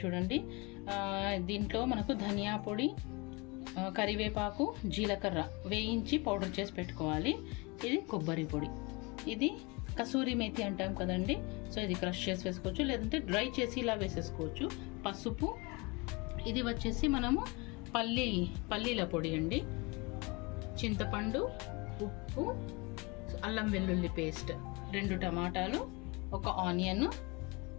చూడండి. దీంట్లో మనకు ధనియా పొడి, కరివేపాకు, జీలకర్ర వేయించి పౌడర్ చేసి పెట్టుకోవాలి. ఇది కొబ్బరి పొడి, ఇది కసూరి మేతి అంటాం కదండి. సో ఇది క్రష్ చేసి వేసుకోవచ్చు, లేదంటే డ్రై చేసి ఇలా వేసేసుకోవచ్చు. పసుపు, ఇది వచ్చేసి మనము పల్లీల పొడి అండి. చింతపండు, ఉప్పు, అల్లం వెల్లుల్లి పేస్ట్, 2 టమాటాలు, 1 ఆనియన్,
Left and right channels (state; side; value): quieter; right; 27.4 dB